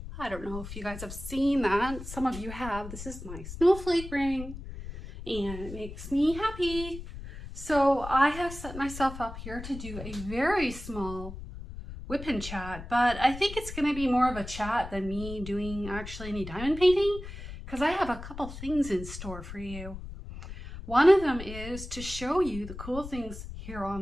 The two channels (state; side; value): noise; left; rumble, 11 dB below the sound